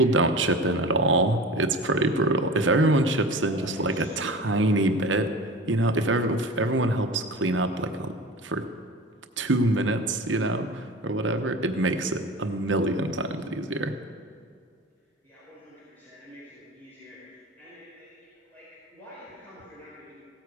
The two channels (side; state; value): both; normal; correlation 0.34